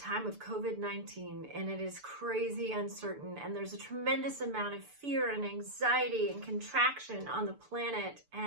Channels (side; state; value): left; late; 6.8 ms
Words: of COVID-19 and it is crazy uncertain, and there's a tremendous amount of fear and anxiety and contraction on the planet.